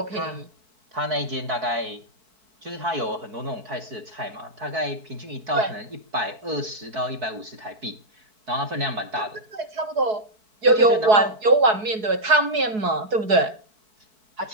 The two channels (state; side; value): late; left; 4.7 ms